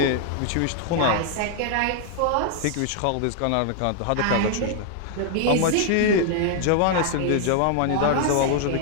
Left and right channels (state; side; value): different; both; correlation 0.00